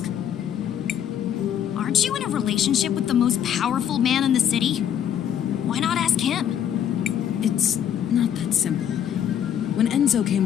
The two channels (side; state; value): right; quieter; 9.5 dB